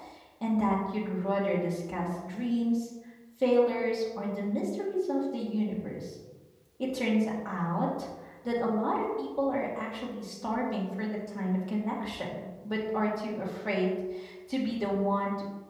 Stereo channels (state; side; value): identical; both; correlation 1.00